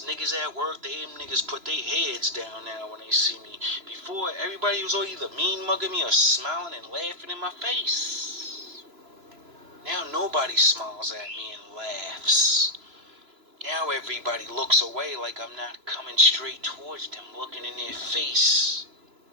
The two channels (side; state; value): left; late; 3.0 ms